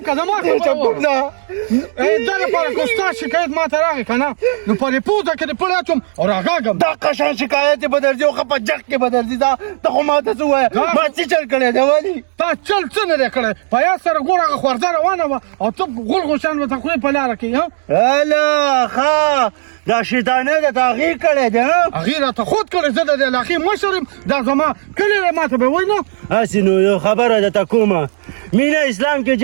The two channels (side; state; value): left; silent; digital silence